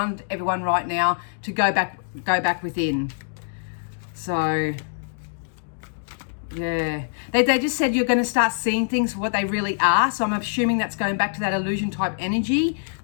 everyone right now, to go back within. So yeah, they just said you're going to start seeing things for what they really are. So I'm assuming that's going back to that illusion type energy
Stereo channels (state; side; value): silent; right; digital silence